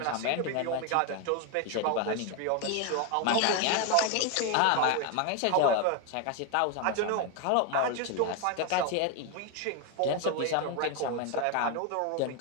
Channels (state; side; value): different; both; correlation 0.01